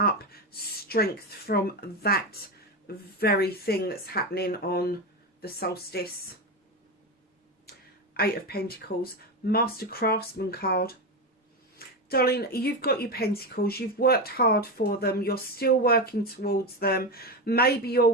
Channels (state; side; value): normal; both; correlation 0.16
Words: strength from that very thing that's happening on the solstice. 8 of Pentacles, Master Craftsman card. Darling, you've got your pentacles. You've worked hard for them. You're still working towards them. Maybe you're